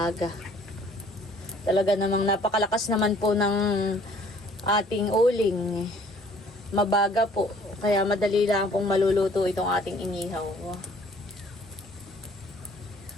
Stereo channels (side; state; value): both; normal; correlation 0.56